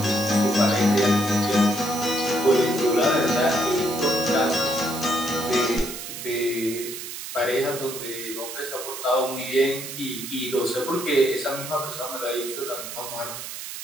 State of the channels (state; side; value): noise; right; hiss, 9 dB below the sound